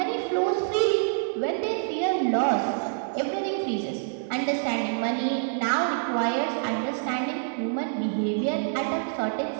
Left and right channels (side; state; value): left; silent; digital silence